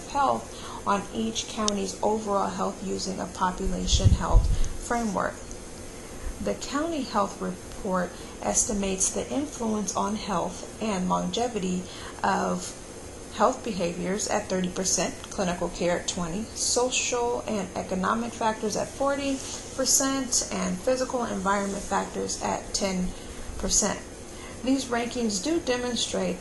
health on each county's overall health using a population health framework. The County Health Report estimates the influence on health and longevity of health behaviors at 30%, clinical care at 20%, social and economic factors at 40%, and physical environment factors at 10%. These rankings do demonstrate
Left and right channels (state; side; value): identical; both; correlation 1.00